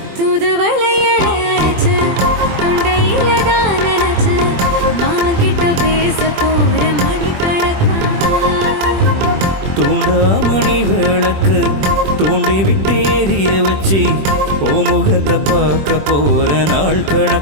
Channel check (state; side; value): late; left; 21 ms